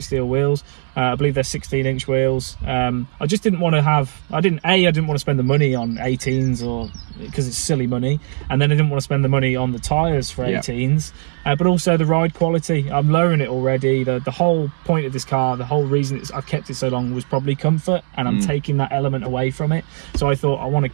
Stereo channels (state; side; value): silent; left; digital silence